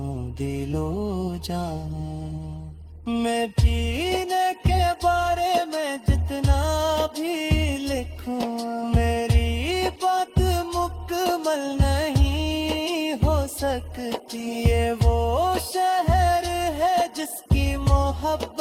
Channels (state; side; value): identical; both; correlation 1.00